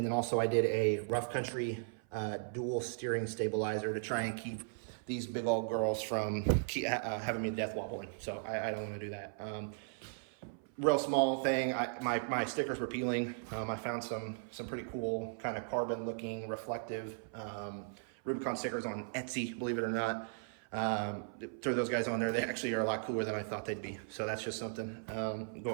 also I did a rough country dual steering stabilizer to try and keep these big old girls from having me death wobbling. So I don't want to do that. Real small thing. My stickers were peeling. I found some pretty cool kind of carbon looking reflective Rubicon stickers on Etsy, believe it or not. Throw those guys on there. They actually are a lot cooler than I thought they'd be. So that's just something,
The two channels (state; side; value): silent; left; 53 dB below the other